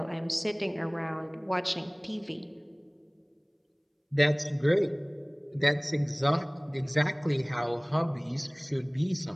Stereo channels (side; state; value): both; identical; correlation 1.00